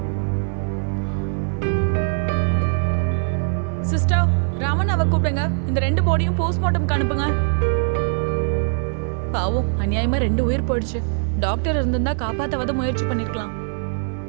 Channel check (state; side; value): silent; left; digital silence